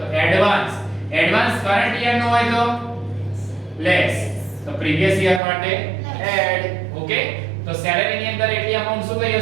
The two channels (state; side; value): drops out; left; at 5.4 s